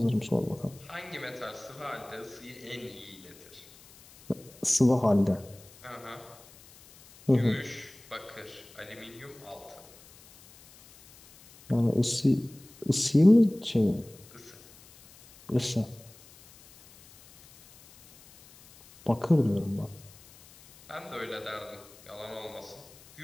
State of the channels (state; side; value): noise; left; hiss, 23 dB below the sound